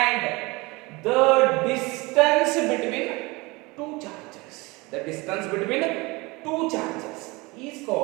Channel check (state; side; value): quieter; left; 24.2 dB